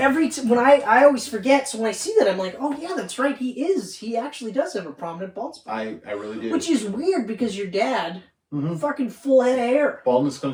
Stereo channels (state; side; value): identical; both; correlation 1.00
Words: I always forget, so when I see that, I'm like, oh, yeah, that's right, he actually does have a prominent bald spot. I really do. Which is weird, because your dad, fucking full head of hair. Baldness